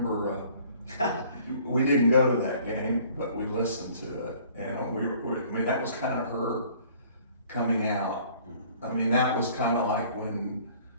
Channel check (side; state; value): both; inverted; correlation -0.55